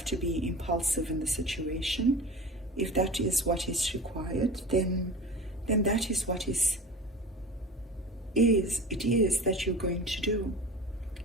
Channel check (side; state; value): both; normal; correlation 0.36